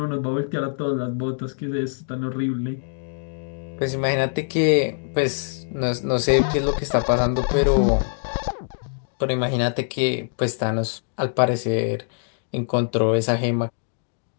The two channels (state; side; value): silent; right; digital silence